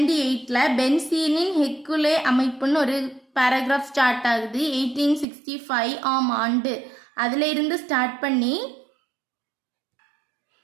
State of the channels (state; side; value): drops out; left; at 5.2 s